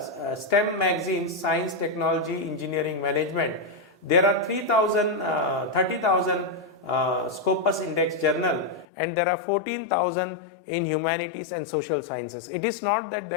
STEM magazines, science, technology, engineering, management, there are 30,000 Scopus index journal, and there are 14,000 in humanities and social sciences. It is not that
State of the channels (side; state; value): right; drops out; at 8.8 s